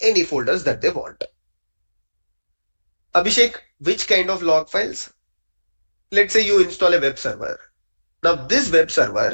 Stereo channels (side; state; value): both; inverted; correlation -1.00